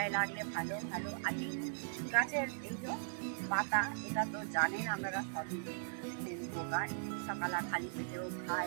লাগলে ভালো ভালো। আর গাছের এই যে পাতা, এটা তো জানেন আপনারা সবই উপকার। সকালে খালি পেটেও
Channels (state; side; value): silent; left; digital silence